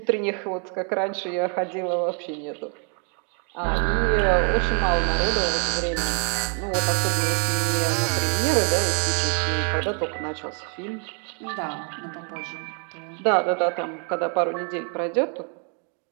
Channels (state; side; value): quieter; left; 39.4 dB